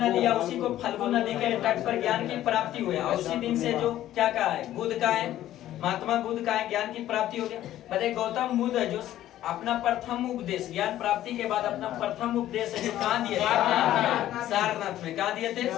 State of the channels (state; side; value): quieter; right; 13.2 dB